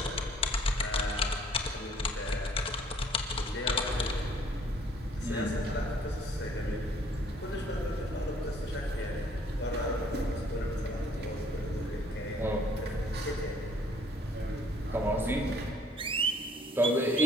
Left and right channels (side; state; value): both; normal; correlation 0.60